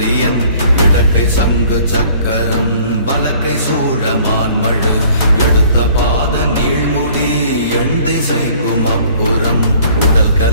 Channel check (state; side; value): inverted; both; correlation -0.55